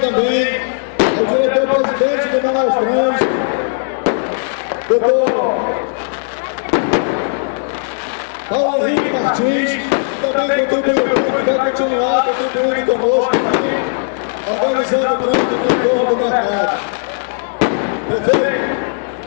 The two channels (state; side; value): silent; right; digital silence